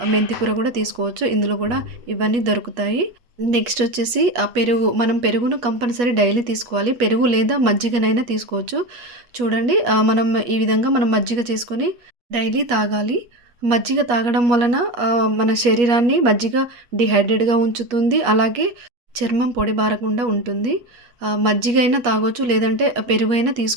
మెంతి కూర గూడా తీసుకోవచ్చు. ఇందులో గూడా ఇవన్నీ దొరుకుతాయి. నెక్స్ట్ వచ్చేసి మనం పెరుగును కంపల్సరీ డైలీ తీసుకోవాలి. పెరుగు లేదా మజ్జిగనైనా తీసుకోవచ్చు. చూడండి ఈ విధంగా మనం మజ్జిగ చేసుకొని డైలీ తాగాలి. మజ్జిగ తాగడం వలన మన శరీరాన్ని మజ్జిగ డీహైడ్రేట్‌గా ఉంచుతుంది. అలాగే చర్మం పొడిబారకుండా ఉంటుంది. మజ్జిగ అయినా తాగొచ్చు. లేదంటే పెరుగైనా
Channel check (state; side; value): late; left; 8.3 ms